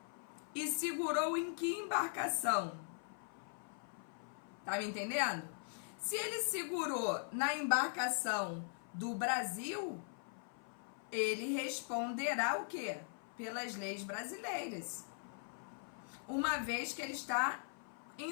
E segurou em que embarcação? Tá me entendendo? Se ele segurou na embarcação do Brasil, ele responderá o quê? Pelas leis brasileiras. Uma vez que ele está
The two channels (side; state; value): right; silent; 51 dB below the other